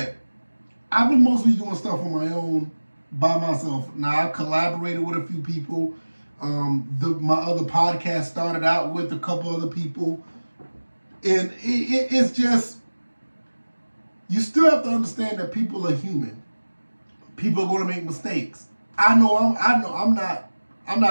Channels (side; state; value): both; inverted; correlation -1.00